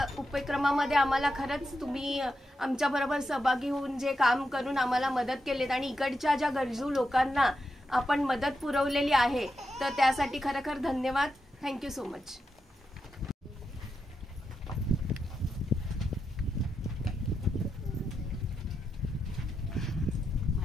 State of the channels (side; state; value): both; normal; correlation 0.86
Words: उपक्रमामध्ये आम्हाला खरंच तुम्ही आमच्याबरोबर सहभागी होऊन जे काम करून आम्हाला मदत केलीत आणि इकडच्या ज्या गरजू लोकांना आपण मदत पुरवलेली आहे तर त्यासाठी खरोखर धन्यवाद. Thank you so much.